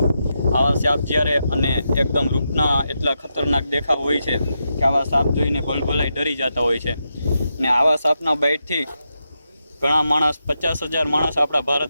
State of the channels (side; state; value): both; inverted; correlation -0.85